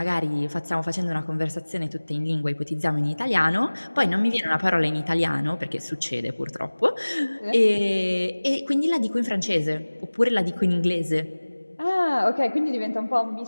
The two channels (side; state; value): both; inverted; correlation -1.00